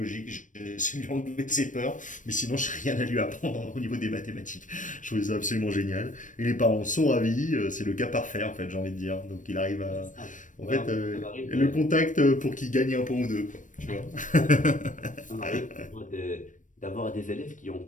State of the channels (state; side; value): late; right; 0.37 ms